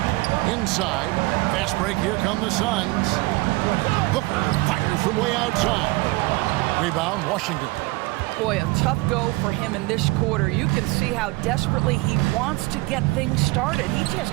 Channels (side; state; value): left; quieter; 22.8 dB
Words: Inside. Fast break. Here come the Suns. Booker fires from way outside. Rebound, Washington. Boy, a tough go for him in this quarter. You can see how desperately he wants to get things started. He just